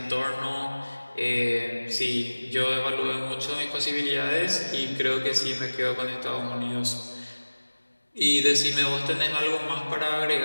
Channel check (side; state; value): both; inverted; correlation -1.00